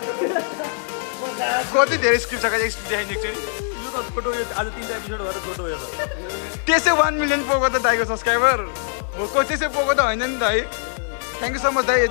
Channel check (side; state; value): right; silent; 61 dB below the other